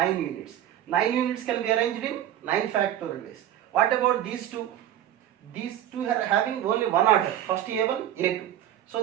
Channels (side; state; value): left; quieter; 11.4 dB